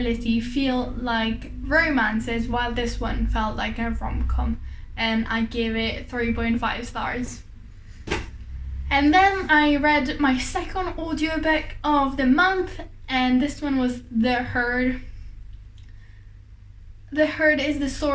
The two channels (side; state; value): both; identical; correlation 1.00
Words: feel like romances, while this one felt like a rom-com, and I gave it 3.5 stars. And then I read my second audiobook of the month, and this one was The Herd. The Herd is the